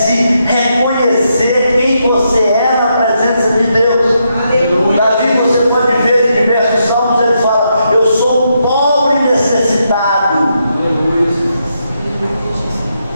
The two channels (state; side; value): inverted; both; correlation -0.81